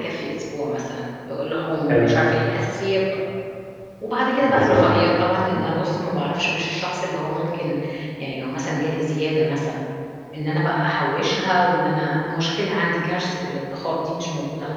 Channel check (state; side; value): identical; both; correlation 1.00